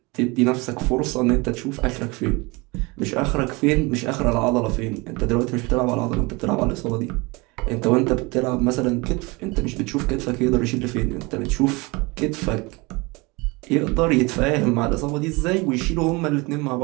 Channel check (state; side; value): quieter; left; 25.5 dB